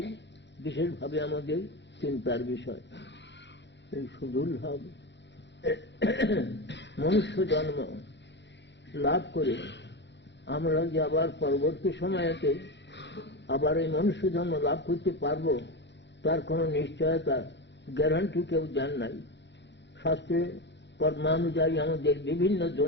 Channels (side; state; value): right; late; 0.52 ms